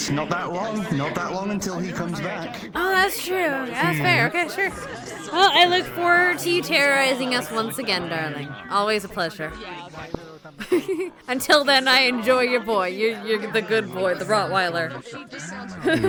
not that long. Not that long until he comes back. Oh, that's true. That's fair. Okay, sure. Well, I look forward to you terrorizing us once again, darling. Always a pleasure. Until then, I enjoy your boy. You're the good boy, the Rottweiler.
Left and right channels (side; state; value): both; identical; correlation 1.00